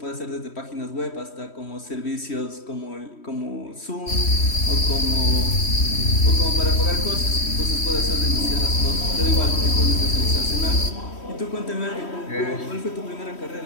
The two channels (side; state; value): right; late; 3.1 ms